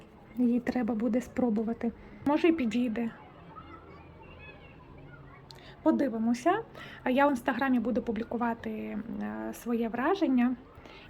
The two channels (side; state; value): both; identical; correlation 1.00